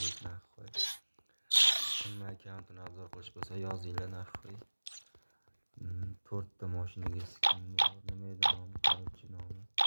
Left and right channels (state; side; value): inverted; both; correlation -1.00